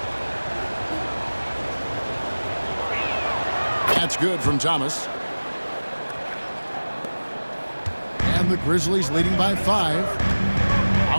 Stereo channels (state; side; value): inverted; both; correlation -1.00